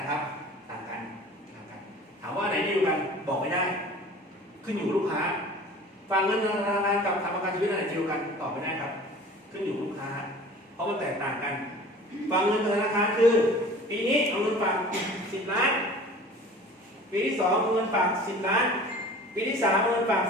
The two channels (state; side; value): normal; both; correlation 0.43